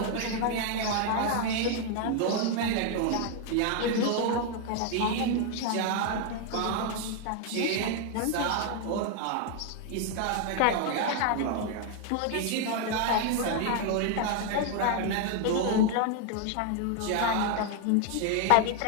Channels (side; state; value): both; different; correlation 0.00